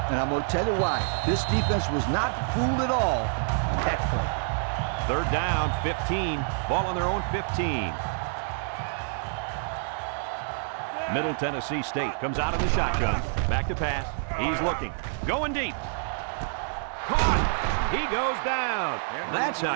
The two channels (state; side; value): silent; left; 60 dB below the other